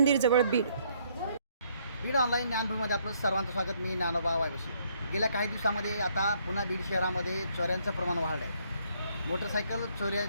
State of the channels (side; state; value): both; inverted; correlation -0.68